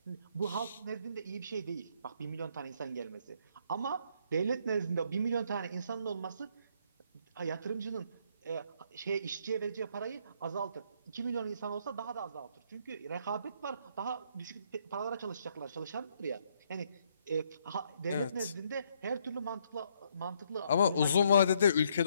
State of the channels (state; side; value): inverted; both; correlation -0.70